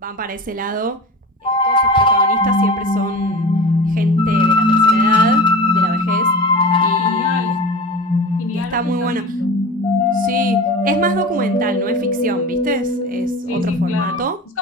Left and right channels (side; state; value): both; normal; correlation 0.32